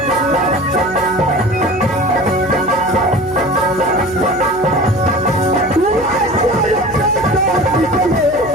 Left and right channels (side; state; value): left; noise; hum, 17 dB below the sound